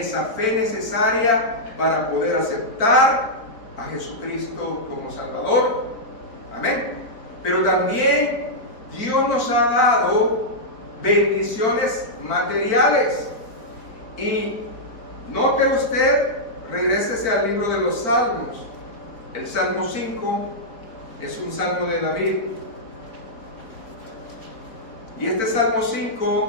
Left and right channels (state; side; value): late; right; 4.4 ms